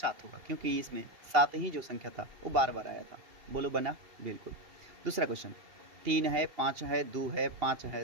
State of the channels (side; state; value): left; late; 2.8 ms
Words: होगा, क्योंकि इसमें 7 ही जो संख्या था वो बार बार आया था। बोलो बना? बिल्कुल। दूसरा क्वेश्चन, 3 है 5 है 2 है 5